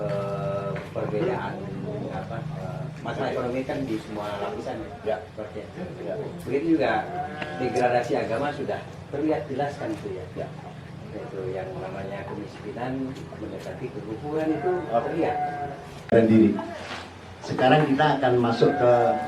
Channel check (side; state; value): both; identical; correlation 1.00